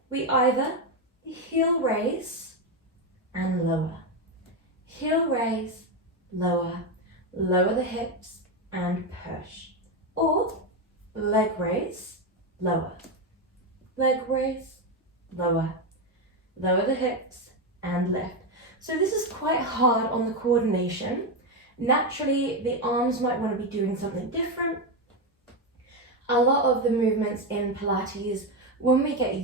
we either heel raise and lower. Heel raise, lower. Lower the hips and push. Or leg raise, lower. Leg raise, lower. Lower the hips and lift. So this is quite hard on the coordination. Naturally, the arms might want to be doing something different. A lot of the movements in Pilates, when we get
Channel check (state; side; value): normal; both; correlation 0.09